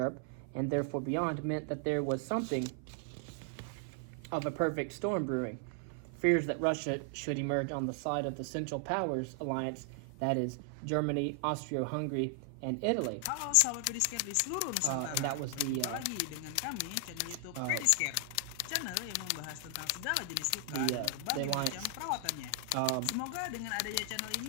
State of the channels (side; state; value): both; different; correlation 0.00